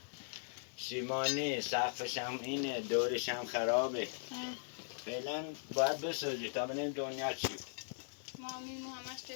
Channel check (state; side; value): silent; right; digital silence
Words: سیمانی سقفش هم اینه دورش هم خرابه فعلا باید بسازی تا ببینیم دنیا چی مامین همش